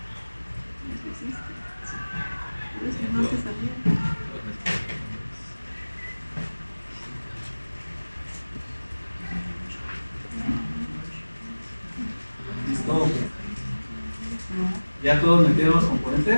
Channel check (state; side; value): inverted; both; correlation -1.00